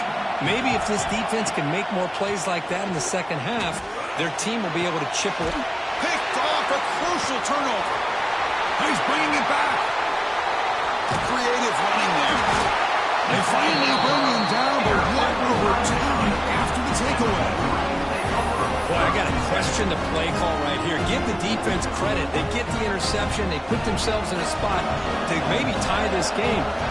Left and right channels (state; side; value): identical; both; correlation 1.00